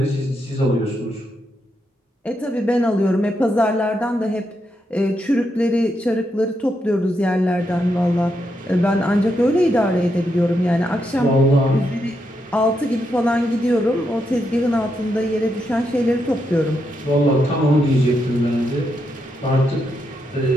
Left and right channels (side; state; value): both; normal; correlation 0.82